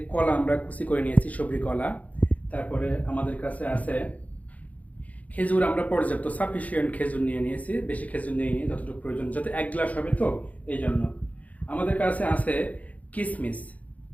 কলা, আমরা কুচি করে নিয়েছি, সবজি কলা। তারপরে আমাদের কাছে আছে খেজুর, আমরা পর্যাপ্ত সাফিসিয়েন্ট খেজুর নিয়ে নিয়েছি, বেশি খেজুর নিয়ে নিয়ে যতটুকু প্রয়োজন, যাতে 1 গ্লাস হবে তো এই জন্য। আমাদের কাছে আছে কিশমিশ,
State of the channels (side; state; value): right; late; 0.071 ms